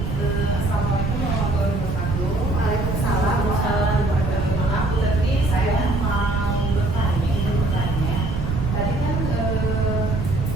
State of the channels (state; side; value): noise; right; rumble, 2 dB below the sound